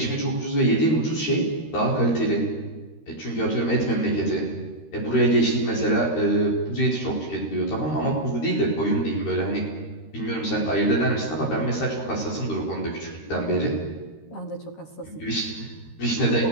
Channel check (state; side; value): late; right; 13 ms